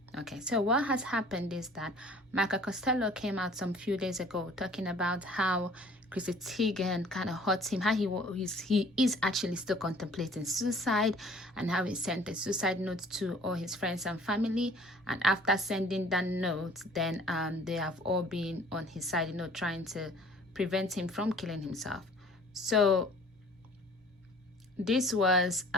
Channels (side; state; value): both; normal; correlation 0.52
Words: Okay, so what has happened is that Michael Costello came out some few days ago talking about how Chrissy Teigen kind of hurt him, how he is actually still contemplating suicide, and how he sent a suicide note to all his friends and family. And after sending that note, then they have all been on his side, trying to prevent him from killing himself. So this was